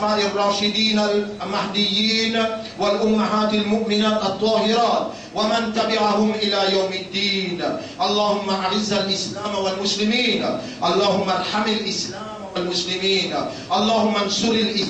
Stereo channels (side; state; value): both; identical; correlation 1.00